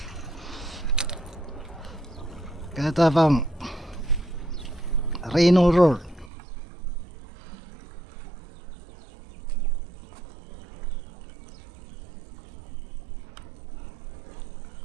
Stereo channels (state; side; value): drops out; left; at 6.3 s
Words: Kaya tapang Reno Roar.